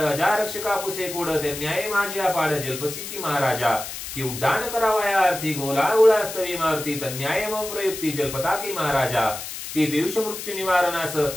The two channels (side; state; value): left; noise; hiss, 8 dB below the sound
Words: रक्षका पुसे कोड ते न्याय माझे अपाड जल्पसी की महाराजा की उड्डाण करावया अर्थी गोला उळास्तवी मारुती तन्याय मम प्रयुक्ती जलपताकी महाराजा की पियुष मृत्यू निवारणास